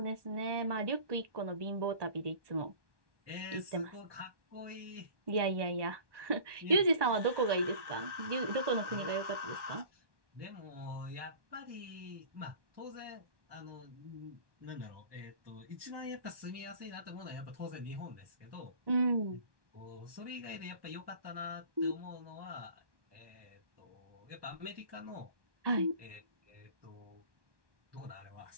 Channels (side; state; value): left; late; 1.1 ms